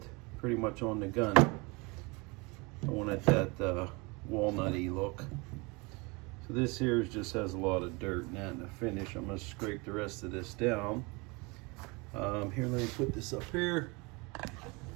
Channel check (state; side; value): quieter; left; 27.2 dB